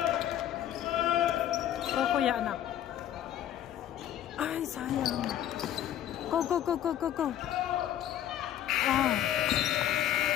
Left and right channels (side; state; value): right; quieter; 11.3 dB